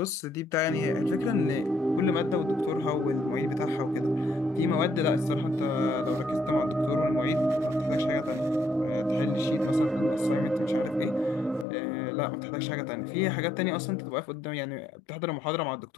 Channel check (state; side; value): drops out; right; at 11.7 s